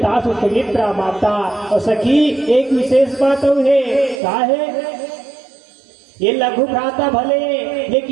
सुमित्रा माता, और सखी एक विशेष बात है, क्या है ये लघु भ्राता भले,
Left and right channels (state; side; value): drops out; left; at 4.2 s